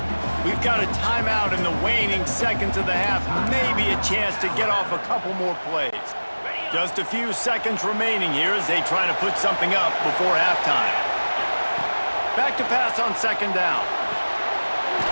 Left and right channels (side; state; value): both; inverted; correlation -1.00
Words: We've got a timeout in the waning seconds of the half. Maybe a chance to get off a couple more plays. Just a few seconds remaining here as they try to put something up before halftime. Back to pass on 2nd down.